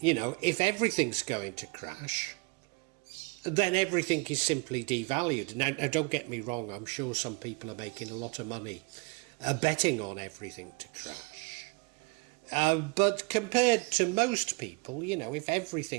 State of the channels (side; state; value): left; quieter; 29.6 dB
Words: know, if everything's going to crash, then everything is simply devalued. Now, don't get me wrong, I'm sure some people are making a lot of money betting on everything to crash. But compared to most people, you know, if